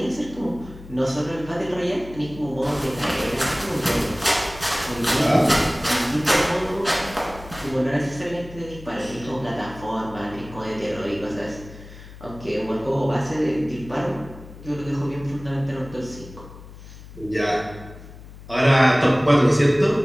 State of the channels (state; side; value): noise; left; hum, 17 dB below the sound